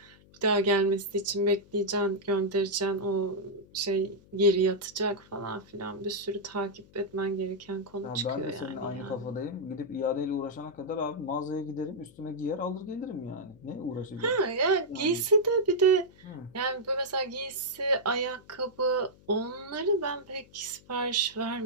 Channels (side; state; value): left; noise; hum, 26 dB below the sound